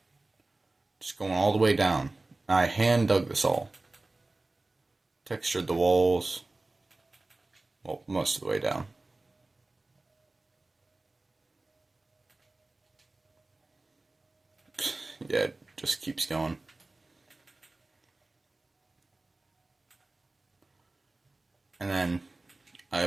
Just going all the way down. I hand dug this all. Textured the walls. Well, most of the way down. Yeah, it just keeps going. And then I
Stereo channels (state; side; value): quieter; left; 3.1 dB